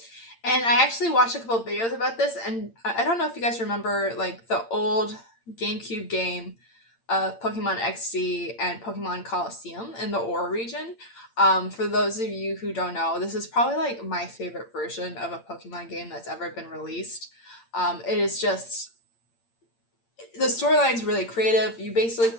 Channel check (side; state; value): right; late; 8.8 ms